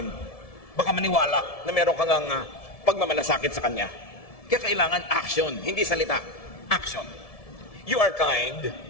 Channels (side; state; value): right; late; 1.7 ms